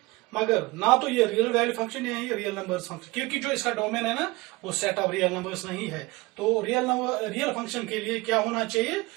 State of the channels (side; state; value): left; quieter; 22.9 dB